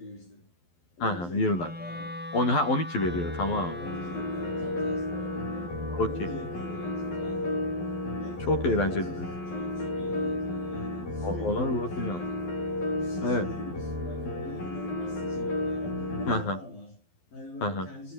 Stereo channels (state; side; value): late; right; 12 ms